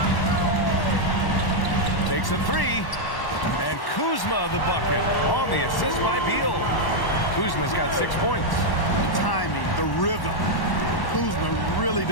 Takes a 3. And Kuzma the bucket on the assist by Beal. Kuzma's got 6 points. The timing, the rhythm. Kuzma really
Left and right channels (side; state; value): right; late; 1.1 ms